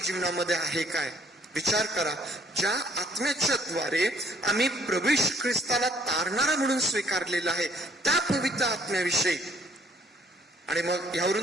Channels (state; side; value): normal; both; correlation 0.63